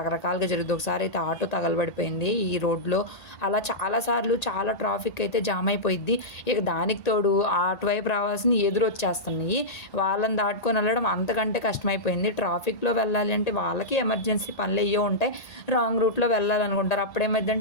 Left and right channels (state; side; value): late; right; 1.8 ms